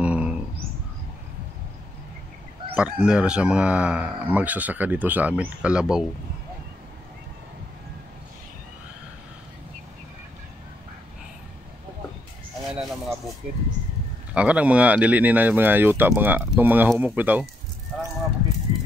partner sa mga magsasaka dito sa amin, kalabaw. Na ng mga bukid. Kanang mga dili ni na mga yuta, itong mga humok bitaw. Kanang mga bukid.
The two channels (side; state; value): both; normal; correlation 0.77